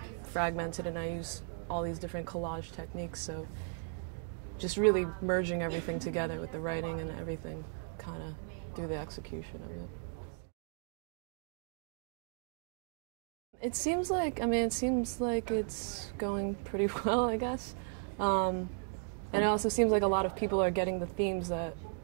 fragmented, and I use all these different collage techniques, so just really merging everything together with the writing and everything kind of through the execution of it. It seems like it's going pretty well, I guess. And it also seems like a lot of people are getting the themes that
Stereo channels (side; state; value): left; silent; 54 dB below the other